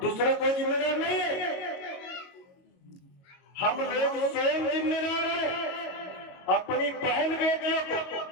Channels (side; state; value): right; late; 22 ms